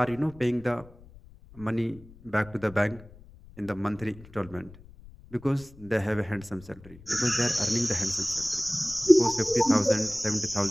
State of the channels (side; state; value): left; noise; rumble, 21 dB below the sound